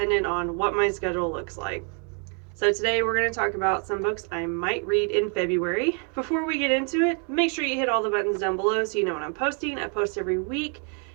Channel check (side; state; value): left; quieter; 39.9 dB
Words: on what my schedule looks like. So today we're going to talk about some books I might read in February. Before we get into it, make sure you hit all the buttons down below so you know when I'm posting. I post every week,